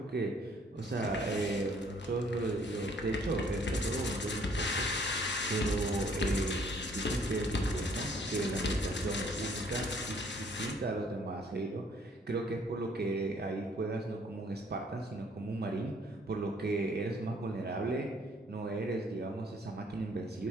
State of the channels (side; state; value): both; normal; correlation 0.62